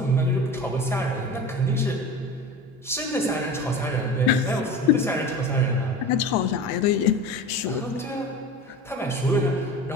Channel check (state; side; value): normal; both; correlation 0.33